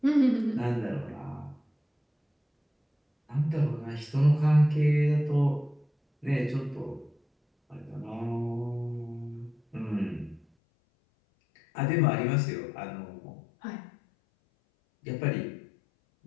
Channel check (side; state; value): right; drops out; at 10.5 s